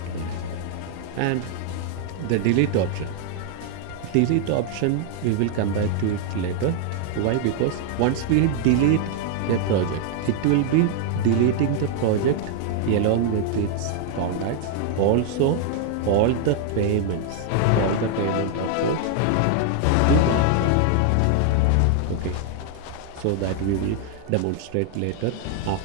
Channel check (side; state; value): both; different; correlation 0.00